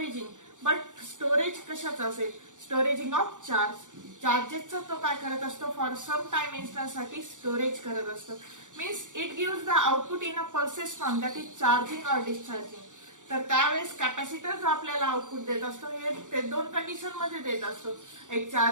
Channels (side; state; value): left; late; 0.86 ms